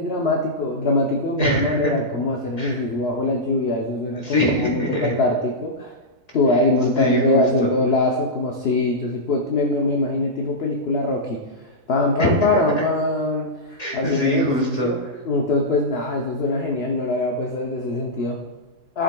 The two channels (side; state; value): both; normal; correlation -0.10